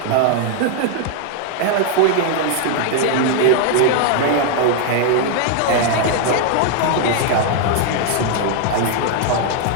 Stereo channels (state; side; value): different; both; correlation 0.00